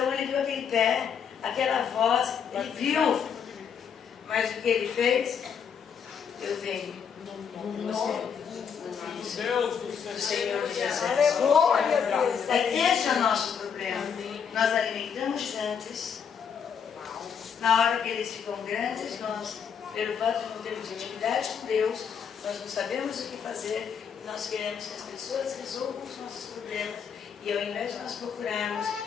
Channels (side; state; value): right; quieter; 7.2 dB